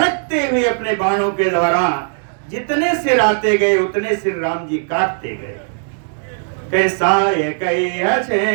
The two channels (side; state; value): left; silent; digital silence